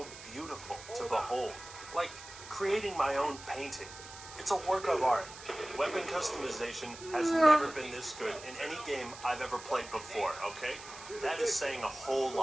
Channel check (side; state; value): right; noise; hiss, 15 dB below the sound